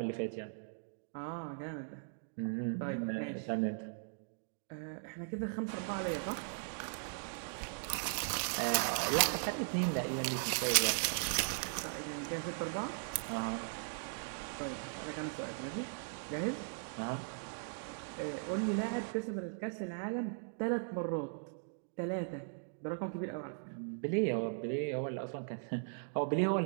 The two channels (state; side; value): silent; left; digital silence